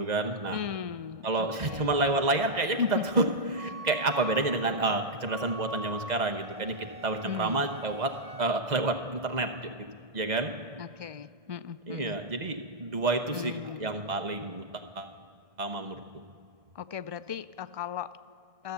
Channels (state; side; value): late; left; 2.0 ms